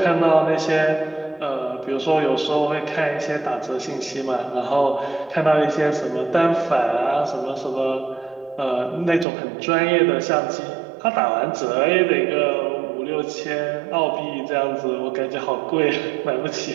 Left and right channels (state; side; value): drops out; left; at 9.2 s